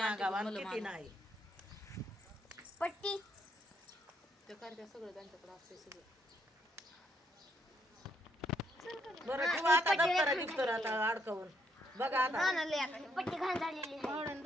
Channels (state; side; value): normal; both; correlation 0.74